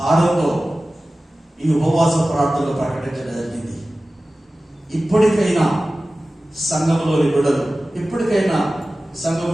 ఈ ఉపవాస ప్రార్థనలు ప్రకటించడం జరిగింది. ఇప్పటికైనా సంఘంలోని బిడ్డలు, ఇప్పటికైనా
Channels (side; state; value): both; normal; correlation 0.96